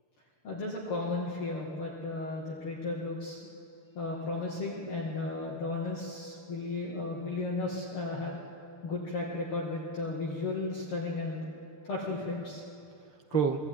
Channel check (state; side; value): late; right; 6.7 ms